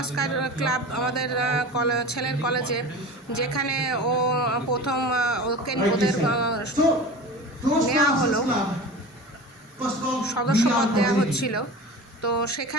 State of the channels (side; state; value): both; normal; correlation 0.34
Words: ক্লাব আমাদের ছেলের কলেজে, যেখানে ও প্রথম ওদের নেওয়া হলো, সদস্যপদ দেওয়া হচ্ছিল। তো